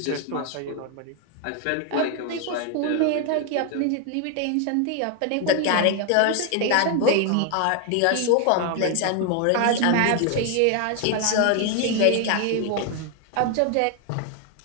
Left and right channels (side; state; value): both; different; correlation 0.00